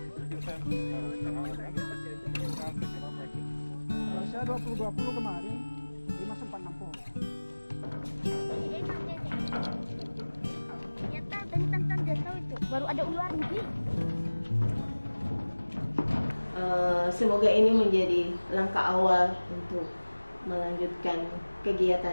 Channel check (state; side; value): inverted; both; correlation -1.00